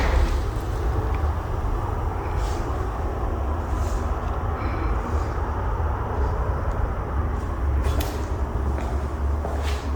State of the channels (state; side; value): identical; both; correlation 1.00